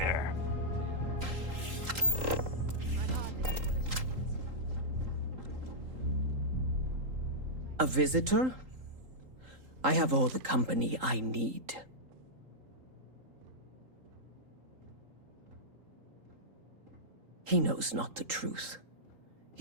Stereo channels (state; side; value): late; left; 3.8 ms